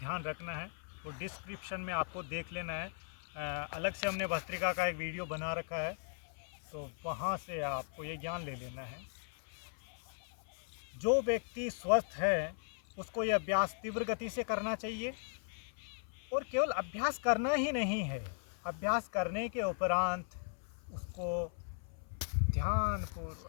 रखना है। तो डिस्क्रिप्शन में आपको देख लेना है। अलग से हमने भस्त्रिका का एक वीडियो बना रखा है, तो वहाँ से आपको ये ज्ञान ले लेना है। जो व्यक्ति स्वस्थ है उसको ये अभ्यास तीव्र गति से करना चाहिए। और केवल अभ्यास करना ही नहीं है, अभ्यास करने के उपरांत उसको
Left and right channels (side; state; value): right; silent; 53 dB below the other